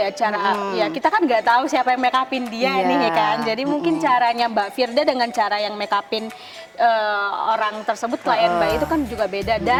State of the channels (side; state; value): both; identical; correlation 1.00